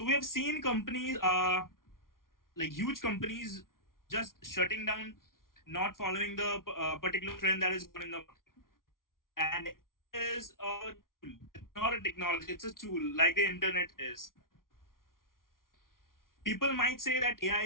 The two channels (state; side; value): late; right; 0.91 ms